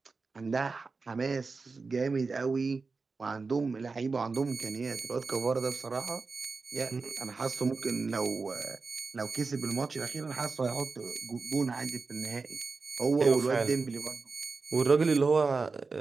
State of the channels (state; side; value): quieter; left; 4.3 dB